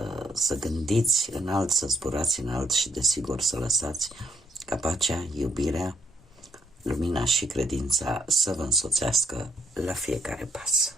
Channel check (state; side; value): normal; both; correlation 0.71